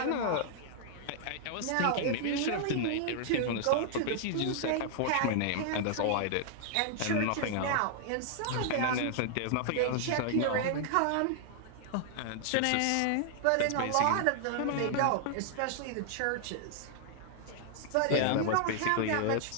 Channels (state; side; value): different; both; correlation -0.01